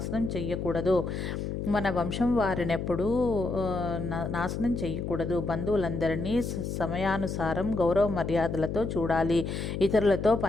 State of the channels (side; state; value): left; noise; hum, 4 dB below the sound